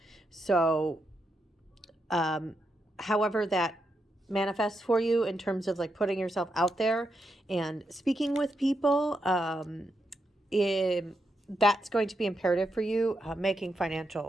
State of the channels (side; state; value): both; normal; correlation 0.83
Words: So, however that manifests for you in terms of like putting yourself out there and speaking with people, that's going to be imperative for you,